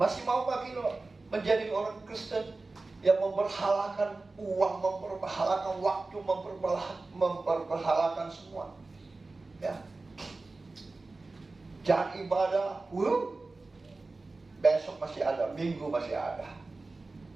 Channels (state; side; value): quieter; left; 3.5 dB